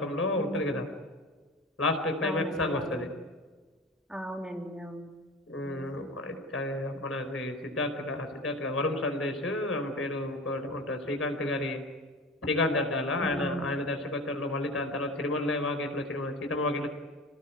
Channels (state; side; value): normal; both; correlation 0.33